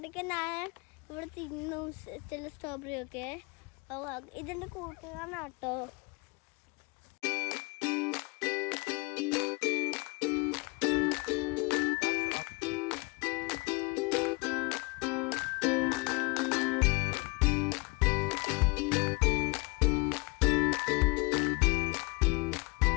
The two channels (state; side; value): quieter; right; 27.6 dB